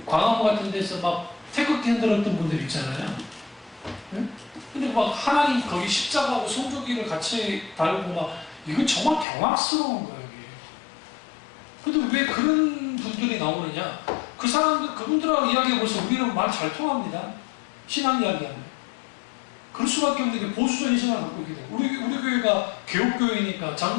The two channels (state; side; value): drops out; right; at 9.2 s